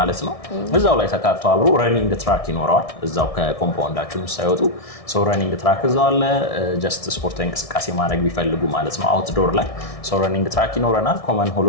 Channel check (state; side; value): late; right; 1.6 ms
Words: ነው። እዛው ላይ ተካቶ አብሮ ረኒንግ ትራክ ይኖረዋል። እዛው ከኮምፓውንዳችን ሳይወጡ ረኒንግ ትራክ እዛው አለ። ጀስት ስፖርታዊ እንቅስቃሴ ማድረግ ቢፈልጉ ማለት ነው አውትዶር ላይ ረኒንግ ትራክ ይኖረናል። ኮመን